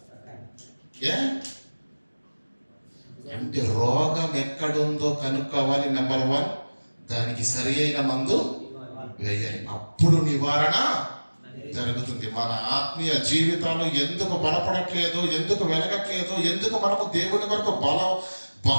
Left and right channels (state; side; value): inverted; both; correlation -1.00